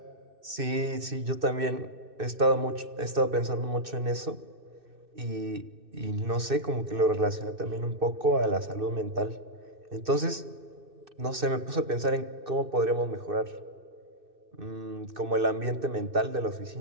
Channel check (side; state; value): left; late; 2.6 ms